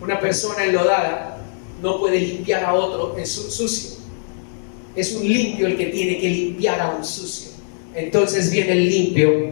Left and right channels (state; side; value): silent; right; digital silence